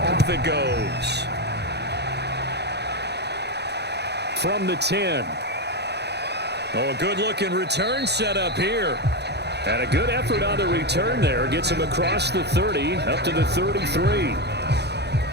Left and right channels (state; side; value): late; left; 0.49 ms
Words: it goes. From the 10. Oh, a good-looking return set up here. And a good effort on the return there. Gets him across the 30, up to the 33.